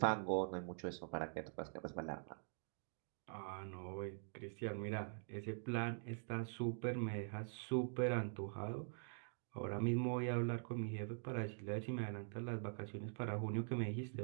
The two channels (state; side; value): silent; left; digital silence